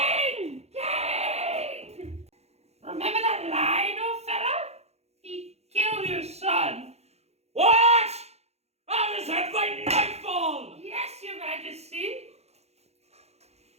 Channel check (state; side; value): late; left; 0.31 ms